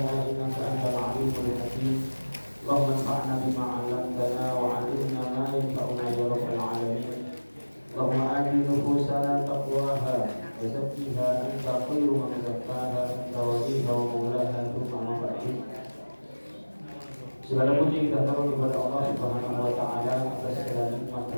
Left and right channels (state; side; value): inverted; both; correlation -1.00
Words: innaka antal 'alimul hakim. Allahumma anfa'na bima 'allamtana wa 'allimna ma yanfa'una ya rabbal 'alamin. Allahumma ati nufusana taqwaha wa zakkiha anta khairu man zakkaha anta waliha wa maulaha thumma ma ba'du. Segala puji kita taruh kepada Allah Subhanahu wa taala atas segala nikmat